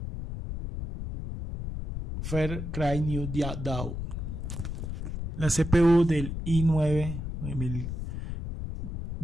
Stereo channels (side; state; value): left; noise; rumble, 5 dB below the sound